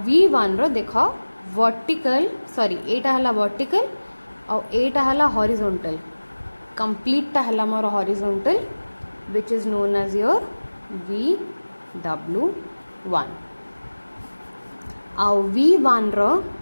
V1 रो देख वर्टिकल सॉरी एटा हैला वर्टिकल आउ एटा हैला हॉरिजॉन्टल कंप्लीट हैला मोर horizontal which is known as your VW1 आउ V1 रो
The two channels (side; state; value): both; inverted; correlation -1.00